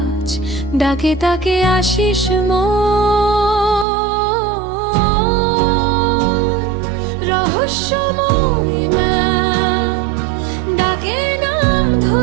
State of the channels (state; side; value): drops out; left; at 3.9 s